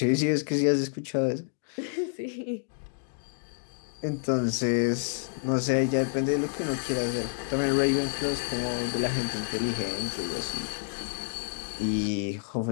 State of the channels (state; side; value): silent; right; 59 dB below the other